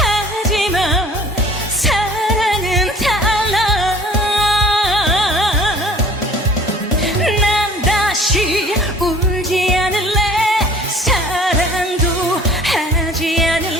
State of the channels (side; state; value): both; normal; correlation 0.49